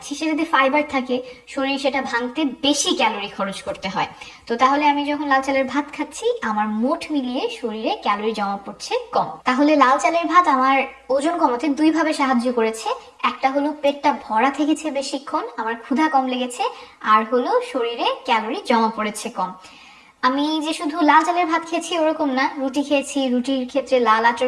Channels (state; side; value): identical; both; correlation 1.00